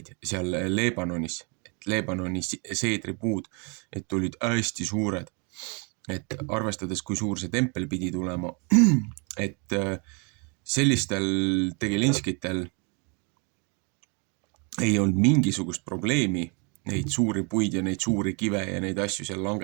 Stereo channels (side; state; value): left; quieter; 34.4 dB